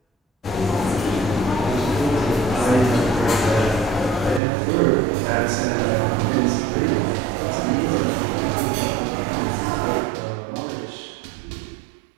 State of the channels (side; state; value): left; drops out; at 4.4 s